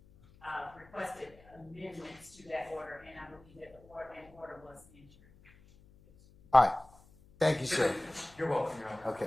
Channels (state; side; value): noise; left; hum, 26 dB below the sound